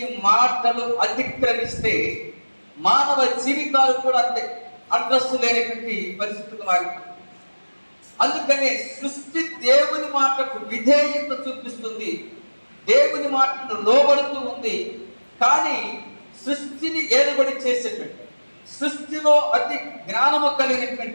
మాటలు అతిక్రమిస్తే మానవ జీవితాలు కూడా అంతే అడ్రస్ లేనటువంటి పరిస్థితులు మారిపోయింది. అందుకనే సృష్టి దేవుని మాటకు విధేయత చూపిస్తుంది, దేవుని మాటను లోబడుతూ ఉంది. కానీ సృష్టిని ఏలుబడి చేసేటువంటి, సృష్టిలో అతి జ్ఞానము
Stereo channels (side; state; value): both; inverted; correlation -1.00